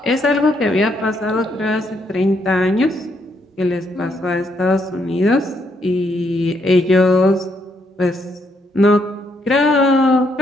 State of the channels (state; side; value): normal; both; correlation 0.74